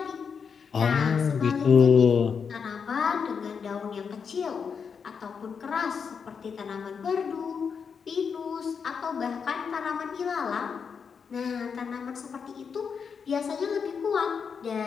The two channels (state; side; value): quieter; right; 6.2 dB